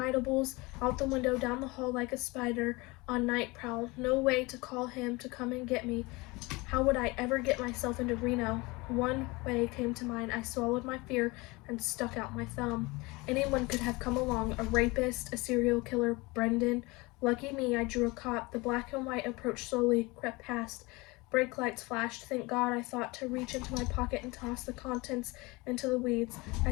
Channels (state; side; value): quieter; right; 24.1 dB